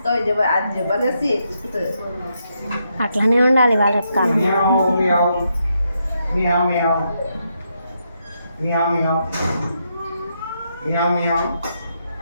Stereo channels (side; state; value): both; inverted; correlation -0.80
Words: అట్లానే ఉండాలి వాళ్ళ కాలం Meow meow. Meow meow. Meow meow.